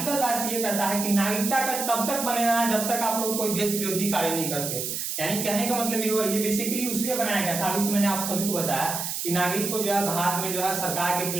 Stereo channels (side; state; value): right; noise; hiss, 3 dB below the sound